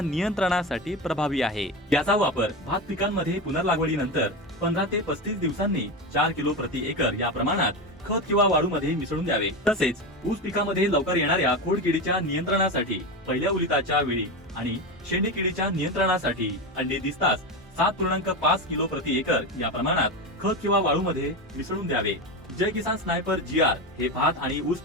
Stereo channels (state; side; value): normal; both; correlation 0.19